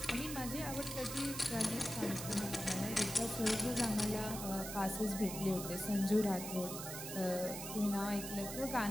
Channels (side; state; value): right; noise; hiss, 7 dB below the sound